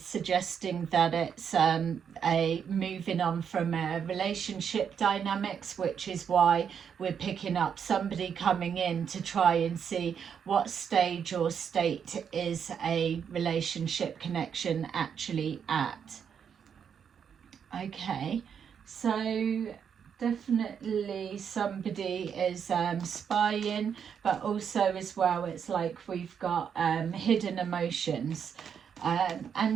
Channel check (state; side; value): quieter; left; 7.5 dB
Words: suggesting that it's a moving on from relationship dynamics, which is why we're picking up somebody coming in to try and see what stage or state is a relationship connection actually at. Okay, so definitely somebody is spying, but also as well it's like we've got hidden emotions,